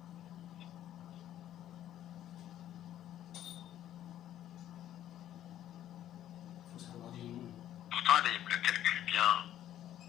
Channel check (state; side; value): quieter; right; 11.9 dB